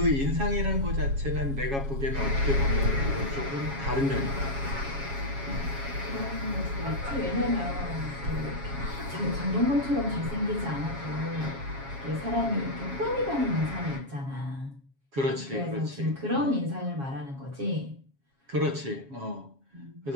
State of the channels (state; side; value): late; left; 7.3 ms